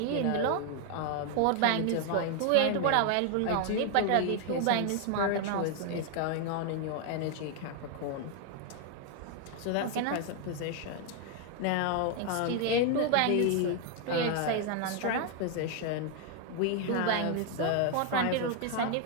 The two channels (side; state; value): both; different; correlation 0.00